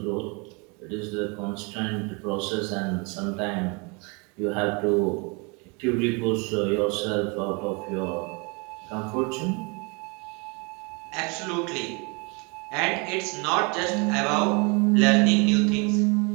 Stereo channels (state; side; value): quieter; left; 30.9 dB